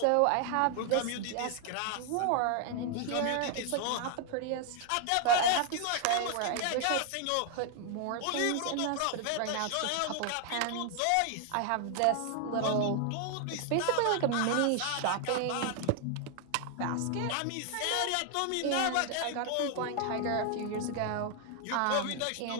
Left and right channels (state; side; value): different; both; correlation 0.00